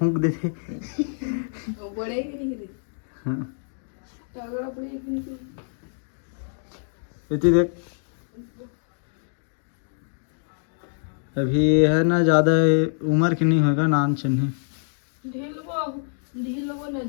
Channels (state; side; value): silent; right; digital silence